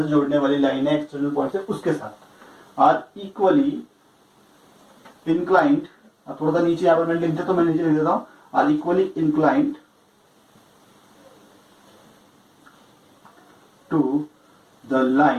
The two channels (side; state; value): both; identical; correlation 1.00